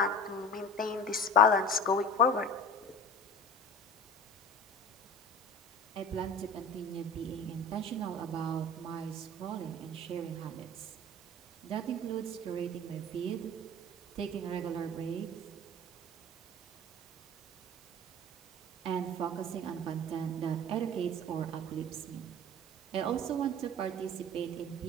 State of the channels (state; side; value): normal; both; correlation 0.37